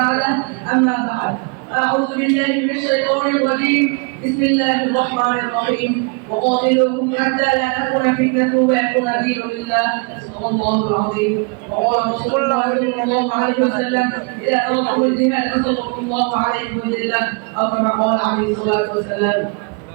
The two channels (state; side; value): quieter; left; 32.9 dB